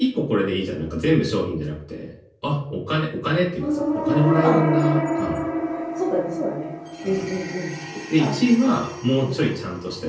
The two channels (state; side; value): identical; both; correlation 1.00